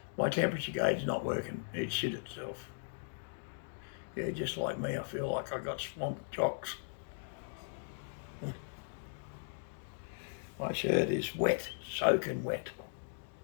My temperature gauge is not working. It shit itself. Yeah, just like me, I feel like I got swamp jocks. My shirt is wet, soaking wet.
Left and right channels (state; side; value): silent; right; digital silence